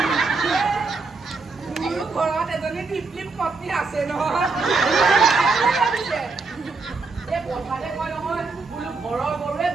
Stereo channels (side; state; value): left; quieter; 4.1 dB